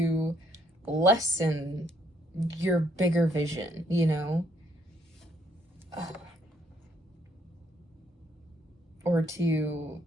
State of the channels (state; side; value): normal; both; correlation 0.70